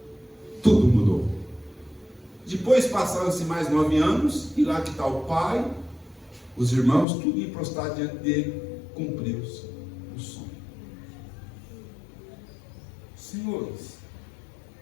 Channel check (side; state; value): right; drops out; at 7.1 s